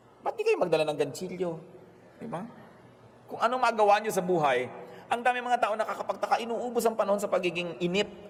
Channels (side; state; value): both; identical; correlation 1.00